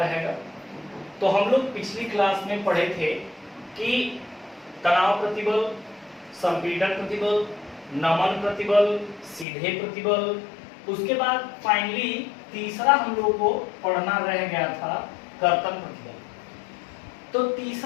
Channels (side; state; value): right; drops out; at 9.5 s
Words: तो हम लोग पिछली क्लास में पढ़े थे कि तनाव प्रतिबल, संपीड़न प्रतिबल, नमन प्रतिबल, सीधे प्रतिबल, उसके बाद फाइनली तीसरा हम लोग को पढ़ना रह गया था कर्तन प्रतिबल। तो